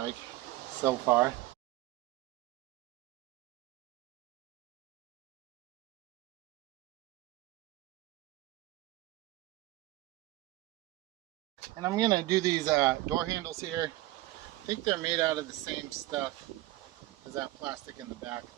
so far. And I'm going to do these door handles here. I think they're made out of the same stuff as that plastic in the back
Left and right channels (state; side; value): quieter; left; 17.1 dB